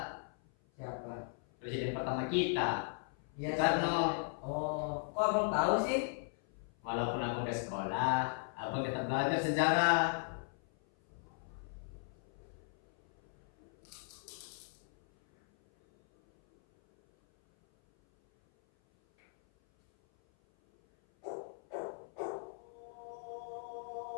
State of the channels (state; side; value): silent; right; 53 dB below the other